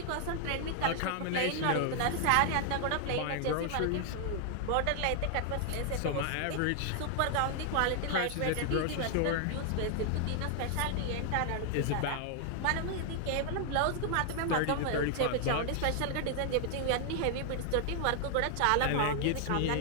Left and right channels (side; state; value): both; different; correlation 0.00